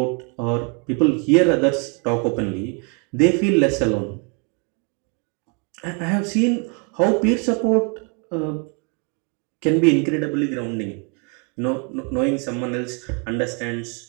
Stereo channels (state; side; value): quieter; left; 34.5 dB